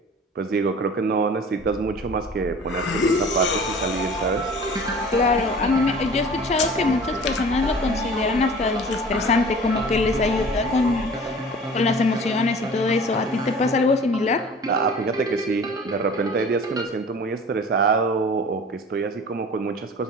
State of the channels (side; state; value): both; normal; correlation 0.44